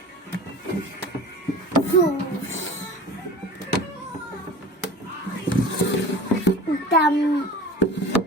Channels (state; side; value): normal; both; correlation 0.38